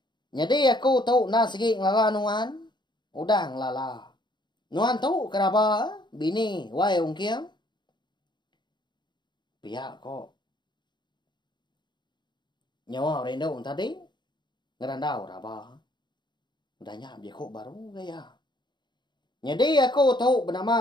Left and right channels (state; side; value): late; right; 0.22 ms